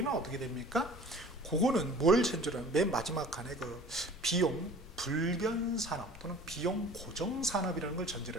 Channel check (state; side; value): noise; left; rumble, 17 dB below the sound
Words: 어떻게 됩니까? 그거는 뭘 전제로 맨 마지막 칸에 그 비용 불변 산업 또는 비용 고정 산업이라는 걸